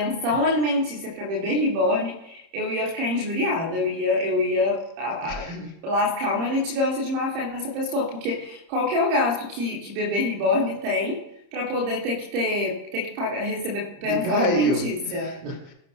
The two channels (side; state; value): left; late; 30 ms